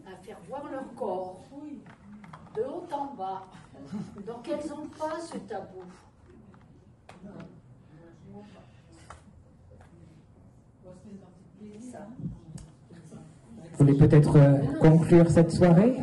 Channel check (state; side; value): identical; both; correlation 1.00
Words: à faire voir leur corps, de haut en bas. Donc elles n'ont pas ce tabou. Ça. Vous voulez peut-être conclure cette soirée,